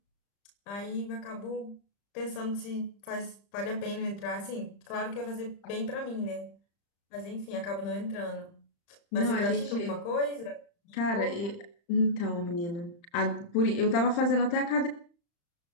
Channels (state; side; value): late; right; 35 ms